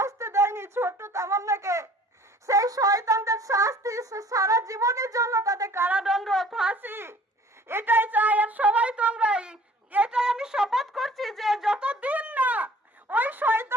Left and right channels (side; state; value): both; normal; correlation 0.51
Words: দেয়নি, ছোট্ট তামান্নাকে, সেই শয়তানদের শাস্তি সারা জীবনের জন্য, তাদের কারাদণ্ড, ফাঁসি, এটাই চাই। আর সবাই তোমরাই, এটাই আমি শপথ করছি যে যতদিন না ওই